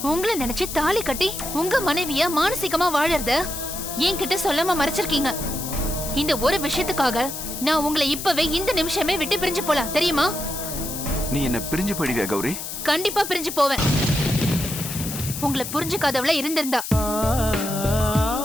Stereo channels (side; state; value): left; noise; hiss, 7 dB below the sound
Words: உங்களை நினைச்சு தாலி கட்டி உங்க மனைவிய மானசீகமா வாழறத என்கிட்ட சொல்லாம மறைச்சிருக்கீங்க. இந்த ஒரு விஷயத்துக்காக நான் உங்களை இப்பவே இந்த நிமிஷமே விட்டு பிரிஞ்சு போலாம், தெரியுமா? நீ என்ன பிரிஞ்சு போயிடுவியா கௌரி? கண்டிப்பா பிரிஞ்சு போவேன். உங்களை புரிஞ்சுக்காதவள இருந்திருந்தா.